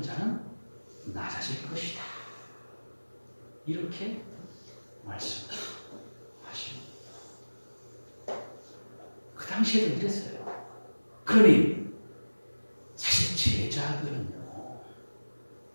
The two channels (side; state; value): both; inverted; correlation -1.00